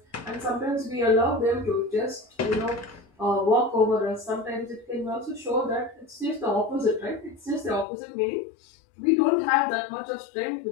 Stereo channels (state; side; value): drops out; right; at 7.9 s